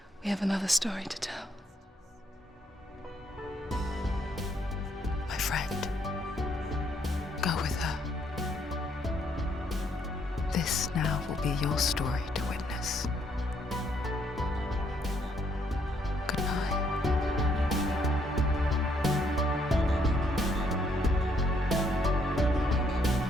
We have another story to tell. My friend, go with her. This now will be your story to witness. Goodbye.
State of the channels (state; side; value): normal; both; correlation 0.70